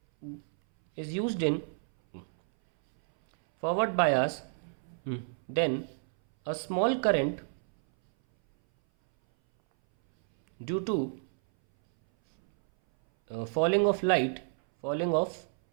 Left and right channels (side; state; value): left; silent; 58 dB below the other